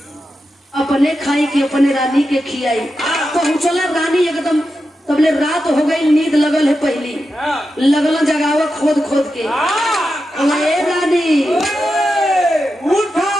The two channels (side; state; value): both; normal; correlation 0.89